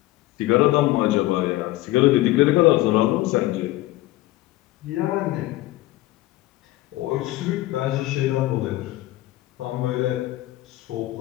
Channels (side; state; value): right; quieter; 17.3 dB